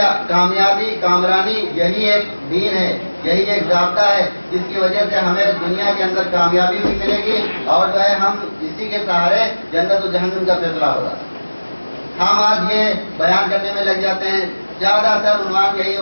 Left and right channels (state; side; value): inverted; both; correlation -1.00